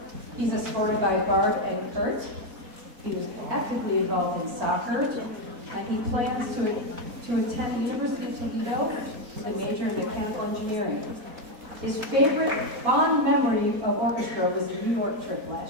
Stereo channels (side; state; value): left; late; 4.2 ms